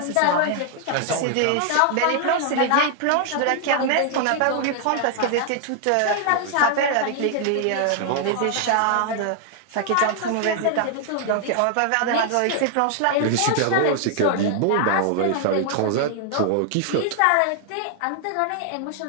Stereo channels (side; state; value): both; different; correlation 0.00